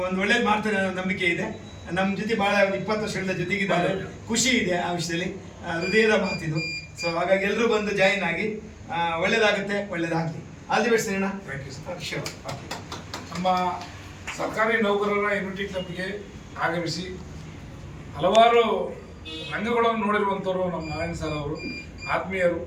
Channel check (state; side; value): identical; both; correlation 1.00